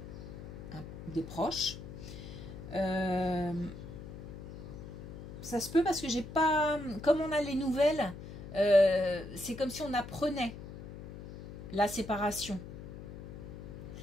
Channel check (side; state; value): left; noise; hum, 11 dB below the sound